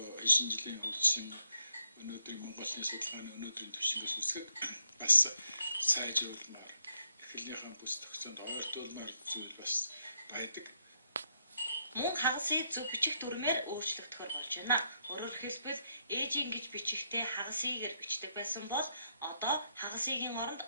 хэшин жилийн хөгжсөн өнөөдрийн Монголын судалгааны өнөөдрийн түвшингээс үсгэд бас сайжруулмаар эхлэлийнхаа бүс тогтцоонд ойртуулмаар зүйл бас байдаг. Мөн хагасыг зөв бичих дүрмээр өөрчлөгдөхөр болж байна. Өөрөөр хэлбэл ээжийн гэж бичихтэй хагасыгээр бичдэг байсан бол одоо хагасыгийн оронд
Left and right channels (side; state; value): both; inverted; correlation -0.76